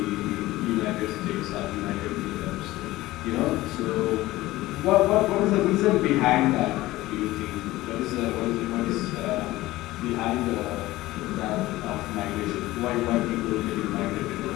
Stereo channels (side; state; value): right; quieter; 17.6 dB